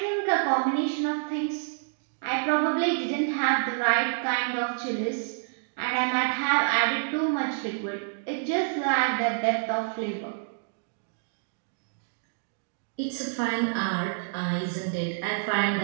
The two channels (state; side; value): silent; left; digital silence